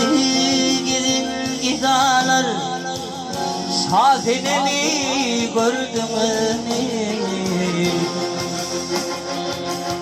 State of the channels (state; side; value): identical; both; correlation 1.00